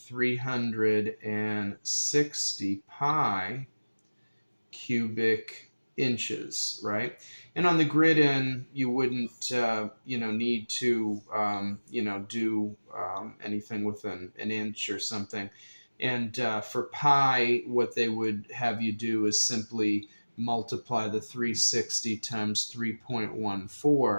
pi cubic inches, right? And on the grid-in, you wouldn't, need to, do anything with an inch or something. And for pi, what they would have you do is simply multiply the 360 times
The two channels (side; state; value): both; inverted; correlation -1.00